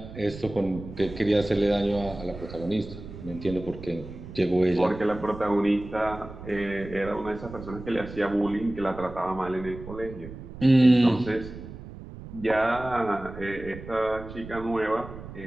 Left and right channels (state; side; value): noise; right; rumble, 13 dB below the sound